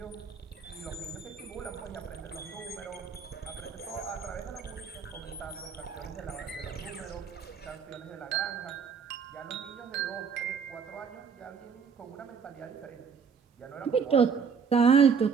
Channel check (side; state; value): left; quieter; 6.2 dB